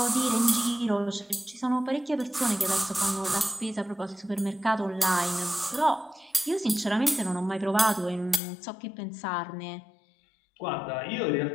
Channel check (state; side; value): drops out; right; at 8.4 s